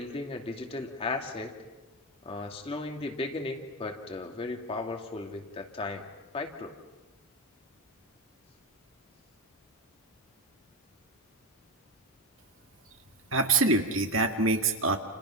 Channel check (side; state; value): both; normal; correlation 0.15